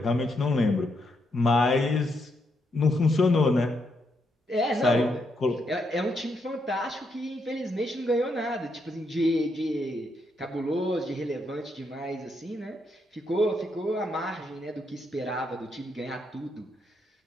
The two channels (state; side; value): normal; both; correlation 0.78